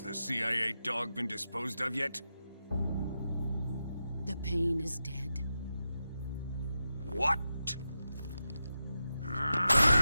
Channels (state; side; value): inverted; both; correlation -0.89